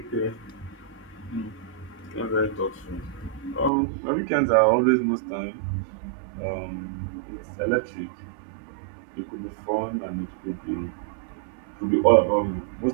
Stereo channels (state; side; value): drops out; left; at 3.7 s